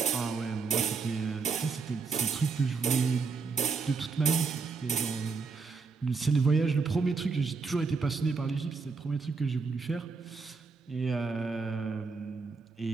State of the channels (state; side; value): quieter; left; 4.8 dB